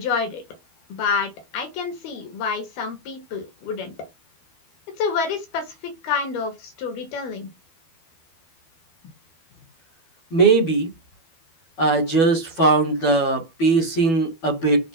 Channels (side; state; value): right; late; 12 ms